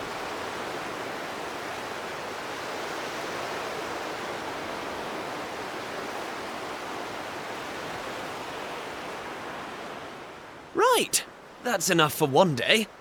Right, that's enough for one day.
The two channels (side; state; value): both; identical; correlation 1.00